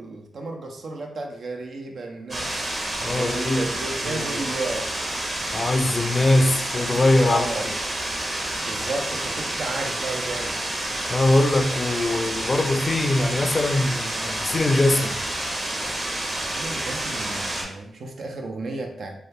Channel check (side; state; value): both; normal; correlation 0.91